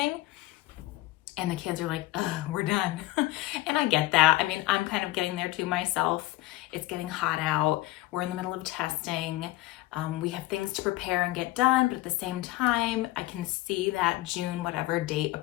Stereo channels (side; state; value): right; quieter; 18.2 dB